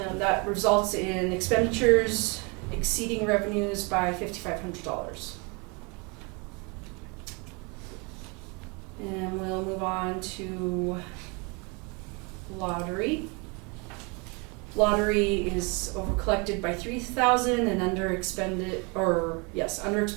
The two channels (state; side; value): quieter; left; 30.7 dB